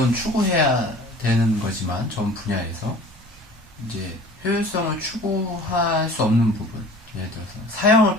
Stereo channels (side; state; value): both; normal; correlation 0.45